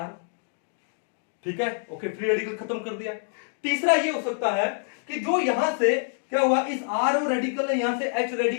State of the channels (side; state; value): right; silent; 61 dB below the other